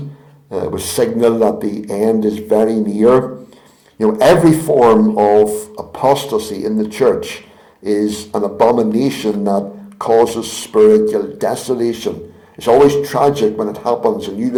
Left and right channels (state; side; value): identical; both; correlation 1.00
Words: It was signal that the end is very near. Every form of apostasy in the church is an abomination that causes spiritual desolation. It's always tragic when it happens, and you